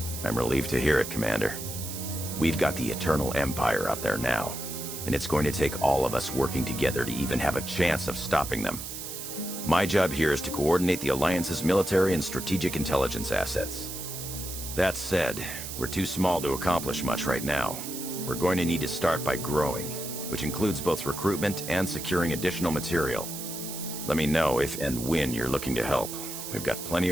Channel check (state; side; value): noise; right; hiss, 8 dB below the sound